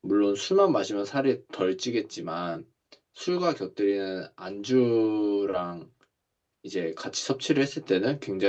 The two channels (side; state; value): both; identical; correlation 1.00